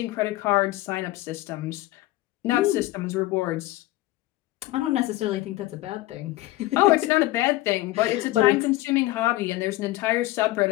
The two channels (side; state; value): right; quieter; 17.6 dB